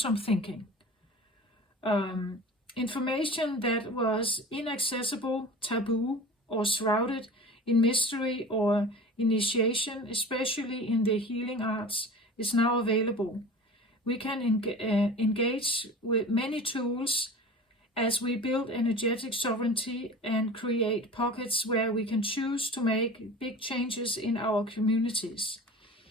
thinking. Information that was inaccessible, taboo, or shrouded in mystery or initiation, especially in the healing arts, is now available. We can engage with many tools as we build energetic sovereignty and create pockets where we can choose to make big changes in our communities.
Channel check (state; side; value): normal; both; correlation 0.37